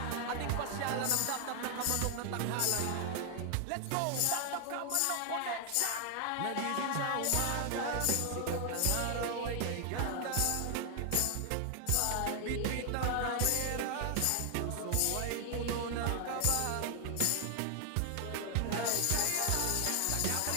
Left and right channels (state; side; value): different; both; correlation 0.00